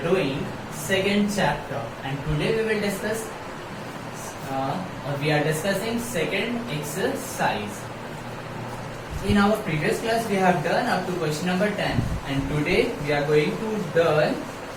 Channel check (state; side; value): identical; both; correlation 1.00